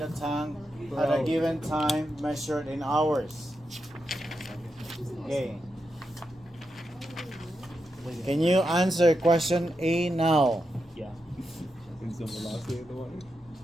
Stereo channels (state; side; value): normal; both; correlation 0.86